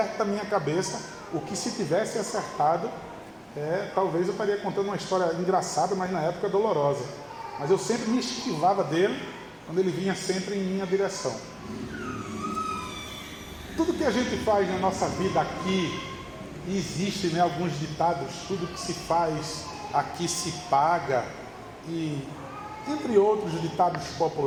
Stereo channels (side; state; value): both; identical; correlation 1.00